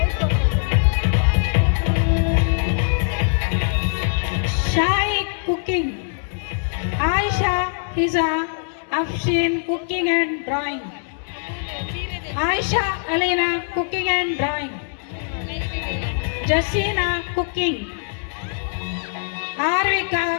Shai cooking. Aisha Hiza Afshin cooking and drawing. Aisha Alina cooking and drawing. Jasina cooking. Arvika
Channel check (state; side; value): silent; right; 64 dB below the other